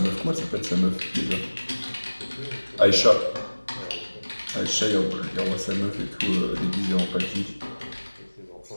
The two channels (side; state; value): both; inverted; correlation -1.00